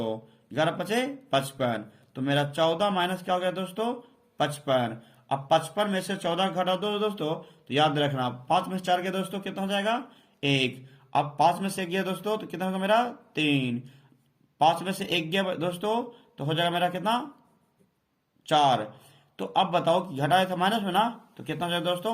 11 पचे 55, तो मेरा 14 माइनस क्या हो गया दोस्तों 55। अब 55 में से 14 घटा दो दोस्तों, तो याद रखना 5 में से 4 गया दोस्तों कितना हो जाएगा 1। अब 5 में से 1 गया दोस्तों तो कितना होगा मेरा 3। 5 में से 1 गया दोस्तों तो हो जाएगा मेरा कितना 4। तो अब बताओ कि घटाया था माइनस में ना, तो कितना हो जाएगा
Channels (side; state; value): both; identical; correlation 1.00